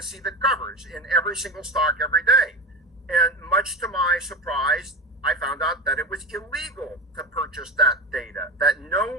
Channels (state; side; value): normal; both; correlation 0.22